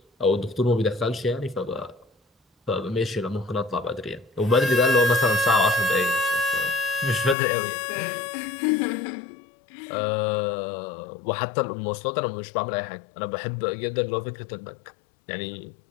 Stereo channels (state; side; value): drops out; right; at 7.4 s